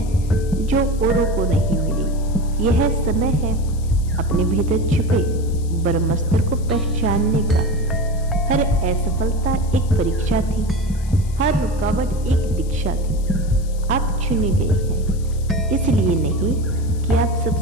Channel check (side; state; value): left; noise; hiss, 21 dB below the sound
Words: जो औरों को नहीं मिली। यह समय है अपने भीतर छुपे ब्रह्मास्त्र को पहचानने का। हर असफलता एक परीक्षा थी, हर रुकावट एक दीक्षा थी। आप चुने गए हैं, इसलिए नहीं कि आप